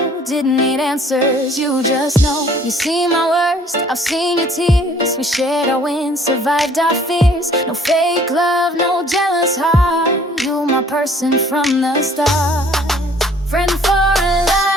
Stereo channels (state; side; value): normal; both; correlation 0.56